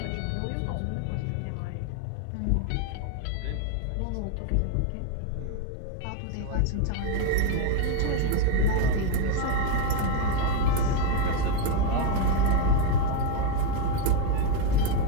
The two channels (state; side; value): different; both; correlation 0.02